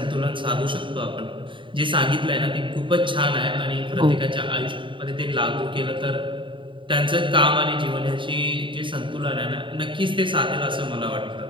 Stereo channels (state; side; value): late; left; 0.24 ms